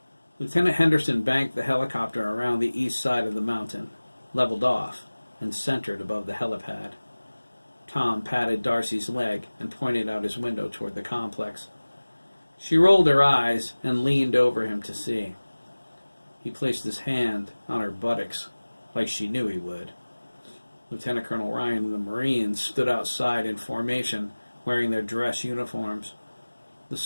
Lieutenant Henderson banked the helicopter around the east side of the mountain, leveled off, and centered above the helipad. Tom patted Darcy's leg and pointed out his window toward the complex. She rolled her eyes and leaned over him to see. He placed his hand on her buttocks, like she knew he would. Lieutenant Colonel Ryan and the Marines stood outside in formation, wearing their dress uniforms. The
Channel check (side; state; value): both; inverted; correlation -1.00